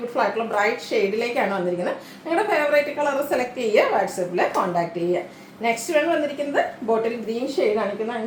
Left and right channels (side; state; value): both; identical; correlation 1.00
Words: ആയിട്ടുള്ള ബ്രൈറ്റ് ഷെയ്ഡിലേക്കാണ് വന്നിരിക്കുന്നത്. നിങ്ങളുടെ ഫേവറേറ്റ് കളർ സെലക്ട് ചെയ്യുക, വാട്സപ്പിൽ കോൺടാക്ട് ചെയ്യുക. നെക്സ്റ്റ് വേണം വന്നിരിക്കുന്നത് ബോട്ടിൽ ഗ്രീൻ ഷെയ്ഡ് കാണിക്കുന്ന